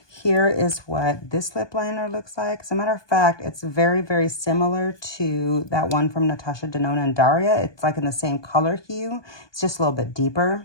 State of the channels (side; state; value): right; late; 1.2 ms